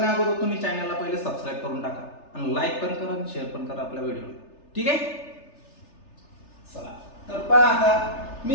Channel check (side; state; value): right; late; 3.3 ms